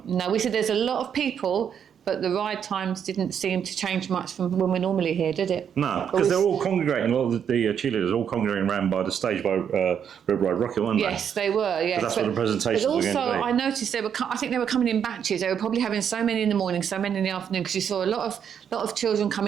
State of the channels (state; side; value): quieter; left; 8.1 dB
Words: No, we said there's a lot of people, but the ride times didn't seem to change much from when we're normally here, did it? No, because they're all congregating, a lot of the cheerleaders are all congregating around by the stage by Red Ride Rocket, weren't they? Yes, they were, yeah. That's what the presentations were going to be. But also, I noticed I think they were coming in batches. They were probably having so many in the morning, so many in the afternoon, because you saw a lot of children